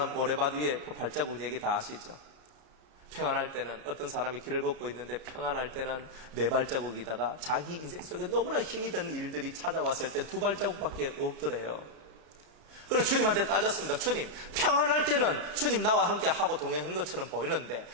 모래밭 위에 그 발자국 얘기 다 아시죠? 평안할 때는 어떤 사람이 길을 걷고 있는데 평안할 때는 네 발자국이다가 자기 인생 속에 너무나 힘이 든 일들이 찾아왔을 때 두 발자국밖에 없더래요. 그래서 주님한테 따졌습니다. 주님, 평안할 때는 주님 나와 함께 하고 동행한 것처럼 보이는데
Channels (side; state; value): left; late; 32 ms